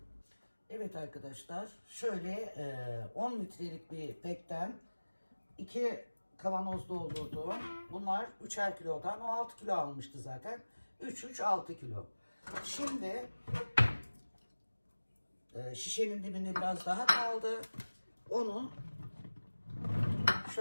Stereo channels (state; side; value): inverted; both; correlation -1.00